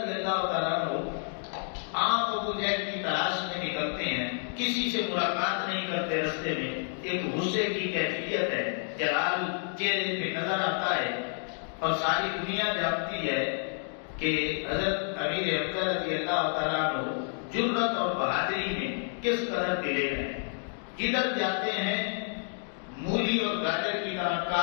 اللہ تعالیٰ عنہ آپ ابو جہل کی تلاش میں نکلتے ہیں، کسی سے ملاقات نہیں کرتے، رستے میں ایک غصے کی کیفیت ہے، جلال چہرے پہ نظر آتا ہے اور ساری دنیا جانتی ہے کہ حضرت امیر حمزہ رضی اللہ تعالیٰ عنہ جرأت اور بہادری میں کس قدر دلیر ہیں۔ کدھر جاتے ہیں مولی اور گاجر کی طرح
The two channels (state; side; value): silent; right; 58 dB below the other